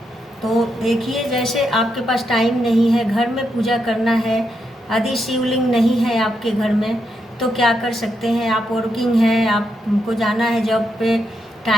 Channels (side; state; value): both; normal; correlation 0.82